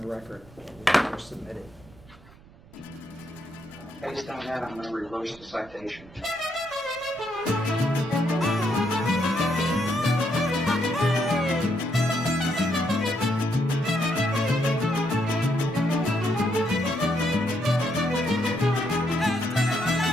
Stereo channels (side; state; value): right; noise; rumble, 24 dB below the sound